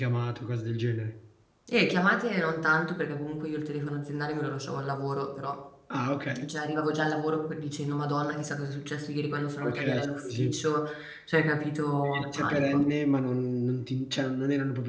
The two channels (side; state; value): both; identical; correlation 1.00